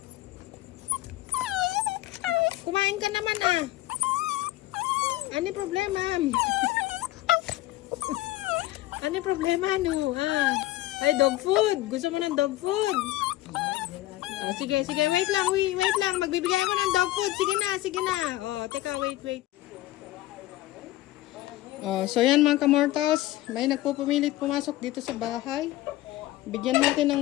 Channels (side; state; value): right; quieter; 16.3 dB